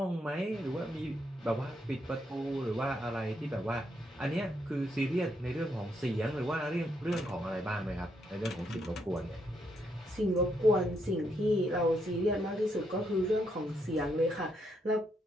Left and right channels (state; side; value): normal; both; correlation 0.77